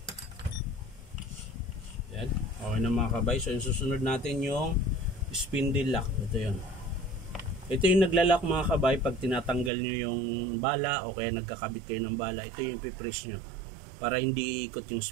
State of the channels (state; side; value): drops out; left; at 9.7 s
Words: Ayan, okay na mga kabay. So yung susunod natin yung spindle lock. Ito yun. Ito yung naglalak mga kabay pag tinatanggal nyo yung bala o kaya nagkakabit kayo ng bala. Ito yung ipipress nyo para hindi ikot yung